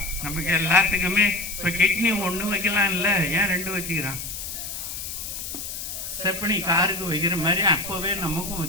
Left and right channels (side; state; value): left; noise; hiss, 7 dB below the sound